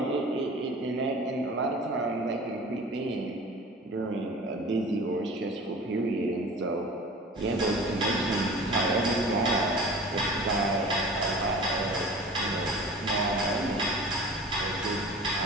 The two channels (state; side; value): normal; both; correlation 0.41